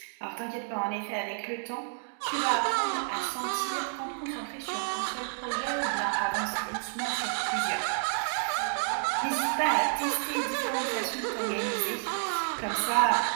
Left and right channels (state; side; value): silent; left; digital silence